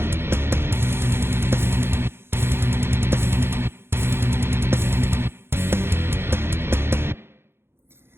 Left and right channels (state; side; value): late; left; 0.11 ms